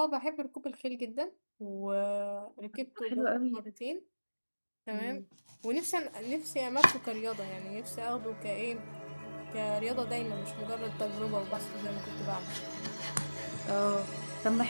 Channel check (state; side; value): inverted; both; correlation -1.00